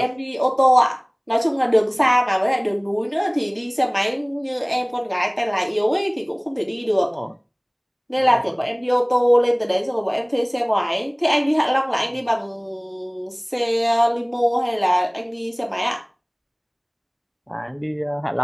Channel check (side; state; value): both; identical; correlation 1.00